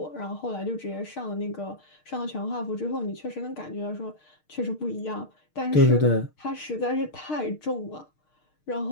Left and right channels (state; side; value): late; right; 6.5 ms